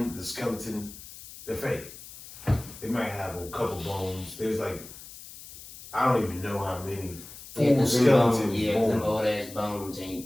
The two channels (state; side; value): noise; left; hiss, 16 dB below the sound